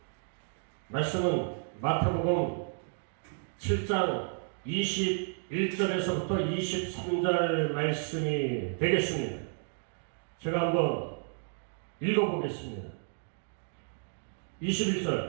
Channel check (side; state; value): left; silent; 56 dB below the other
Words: 마태복음 7장 21절에서부터 23절 말씀이 되겠습니다. 제가 한번 읽어보겠습니다.